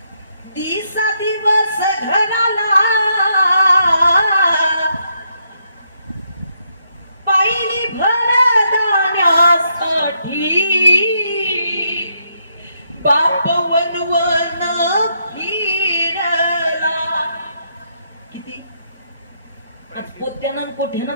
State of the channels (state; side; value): inverted; both; correlation -0.77